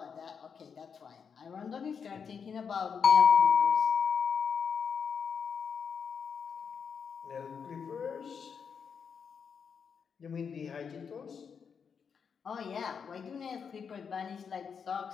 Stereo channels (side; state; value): right; quieter; 6.5 dB